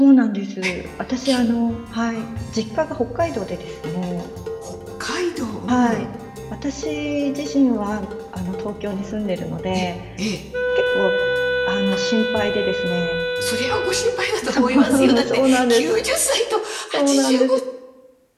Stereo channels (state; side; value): identical; both; correlation 1.00